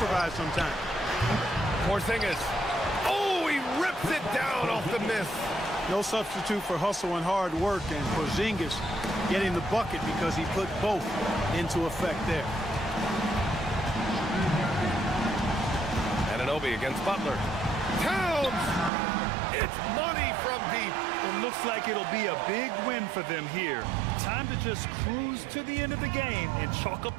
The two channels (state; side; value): drops out; left; at 18.9 s